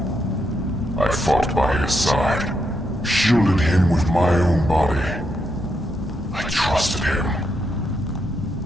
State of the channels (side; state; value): both; normal; correlation 0.80